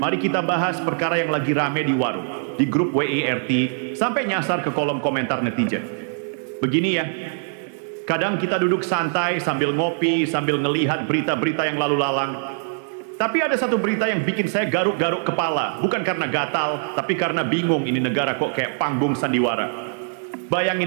kita bahas perkara yang lagi rame di warung, di grup WIRT, sampai nyasar ke kolom komentar netizen. Begini ya, kadang kita duduk santai sambil ngopi, sambil ngelihat berita-berita yang lalu lalang. Tapi ada satu berita yang bikin saya garuk-garuk kepala, bukan karena gatal, tapi karena bingung ini negara kok kayak panggung sandiwara.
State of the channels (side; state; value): left; silent; digital silence